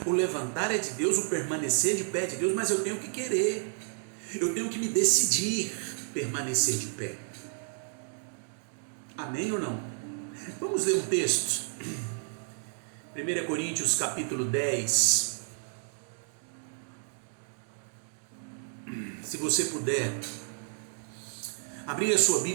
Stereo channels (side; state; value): left; silent; 56 dB below the other